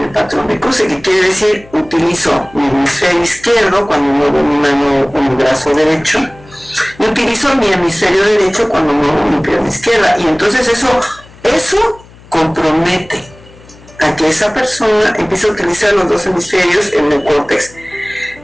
el patrón de cruce, que quiere decir utilizo mi hemisferio izquierdo cuando muevo mi mano o mi brazo derecho, y utilizo mi hemisferio derecho cuando muevo mi pierna izquierda, y entonces eso compromete a que esa persona empiece a utilizar los dos hemisferios en el córtex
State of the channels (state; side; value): noise; left; hum, 23 dB below the sound